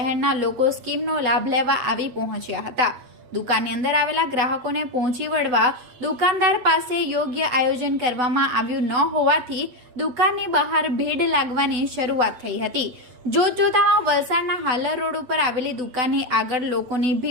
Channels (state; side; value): late; left; 8.0 ms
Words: લોકો સ્કીમનો લાભ લેવા આવી પહોંચ્યા હતા। દુકાનની અંદર આવેલા ગ્રાહકોને પહોંચી વળવા દુકાનદાર પાસે યોગ્ય આયોજન કરવામાં આવ્યું ન હોવાથી દુકાનની બહાર ભીડ લાગવાની શરૂઆત થઈ હતી। જોતજોતામાં વલસાડના હાલર રોડ ઉપર આવેલી દુકાનની આગળ લોકોની